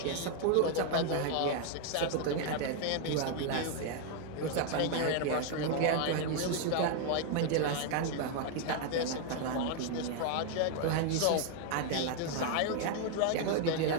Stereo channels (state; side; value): different; both; correlation 0.00